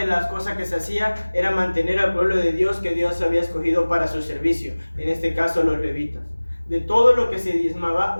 las cosas que se hacía era mantener al pueblo de Dios que Dios había escogido para su servicio, en este caso los levitas. De todo lo que se diezmaba,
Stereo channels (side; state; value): both; inverted; correlation -1.00